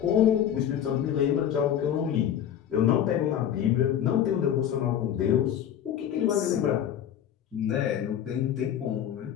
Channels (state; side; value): quieter; right; 9.9 dB